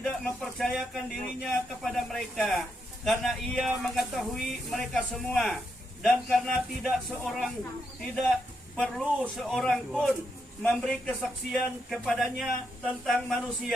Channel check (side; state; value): both; normal; correlation 0.81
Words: mempercayakan dirinya kepada mereka, karena ia mengetahui mereka semua, dan karena tidak perlu seorang pun memberi kesaksian kepadanya tentang